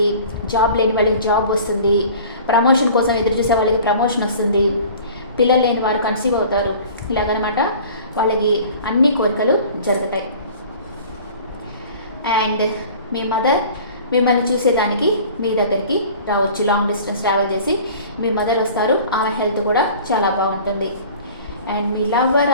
జాబ్ లేని వాళ్ళకి జాబ్ వస్తుంది, ప్రమోషన్ కోసం ఎదురు చూసే వాళ్ళకి ప్రమోషన్ వస్తుంది, పిల్లలు లేని వారు కన్సీవ్ అవుతారు. ఇలాగనమాట వాళ్ళకి అన్ని కోరికలు జరుగుతాయి. అండ్ మీ మదర్ మిమ్మల్ని చూసేదానికి మీ దగ్గరికి రావచ్చు. లాంగ్ డిస్టెన్స్ ట్రావెల్ చేసి మీ మదర్ వస్తారు. ఆమె హెల్త్ కూడా చాలా బాగుంటుంది. And me lover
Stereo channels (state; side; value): inverted; both; correlation -0.45